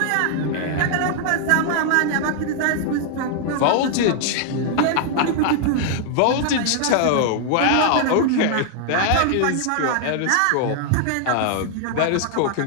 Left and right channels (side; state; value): both; different; correlation 0.00